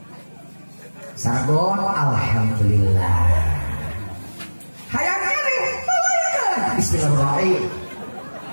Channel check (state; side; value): inverted; both; correlation -1.00